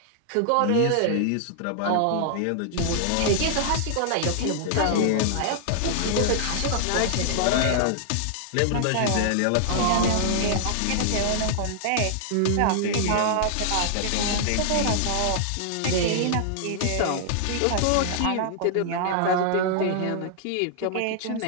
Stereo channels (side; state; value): both; different; correlation -0.01